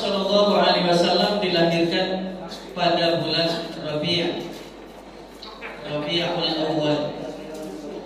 dilahirkan pada bulan Rabi'ul Awal.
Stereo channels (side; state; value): both; identical; correlation 1.00